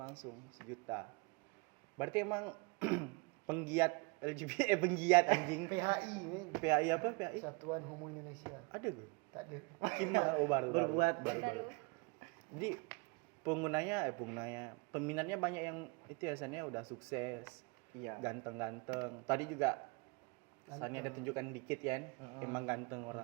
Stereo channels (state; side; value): quieter; left; 29.7 dB